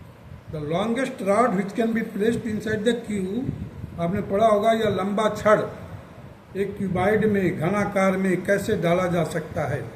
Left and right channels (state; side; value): identical; both; correlation 1.00